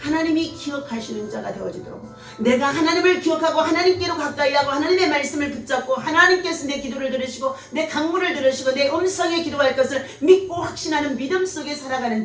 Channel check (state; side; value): identical; both; correlation 1.00